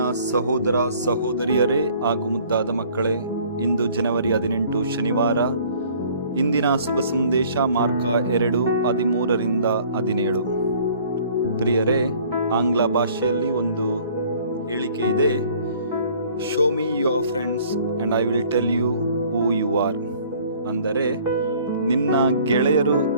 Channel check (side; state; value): both; inverted; correlation -0.54